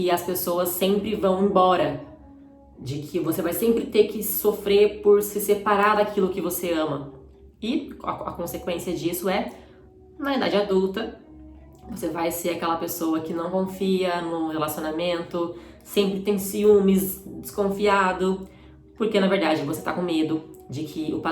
as pessoas sempre vão embora, de que você vai sempre ter que sofrer por se separar daquilo que você ama. E a consequência disso é, na idade adulta, você vai ser aquela pessoa que não confia no relacionamento, sempre tem ciúmes, desconfiado, porque na verdade você está com medo de que o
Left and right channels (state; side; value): identical; both; correlation 1.00